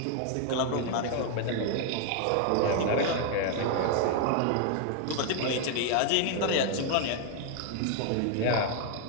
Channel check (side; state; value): both; different; correlation 0.00